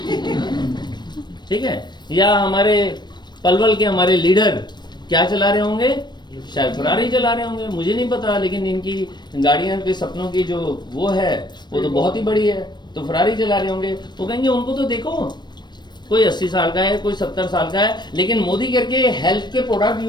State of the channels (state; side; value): late; right; 0.21 ms